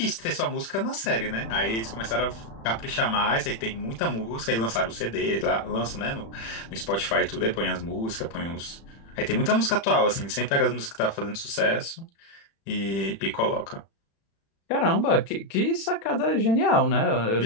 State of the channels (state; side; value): late; right; 36 ms